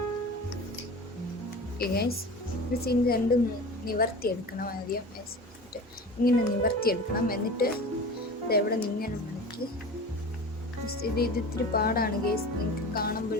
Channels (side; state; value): both; normal; correlation 0.35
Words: ഓക്കെ ഗൈസ്, ഇത് രണ്ടും നിവർത്തിയെടുക്കണം. ആദ്യം ഇങ്ങനെ നിവർത്തിയെടുക്കണം. എന്നിട്ട് ഇതെവിടെ ഇങ്ങനെ മടക്കി ഇത് ഇത്തിരി പാടാണ് ഗൈസ്, നിങ്ങൾക്ക്